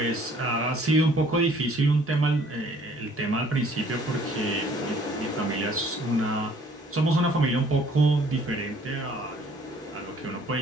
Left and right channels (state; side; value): normal; both; correlation 0.58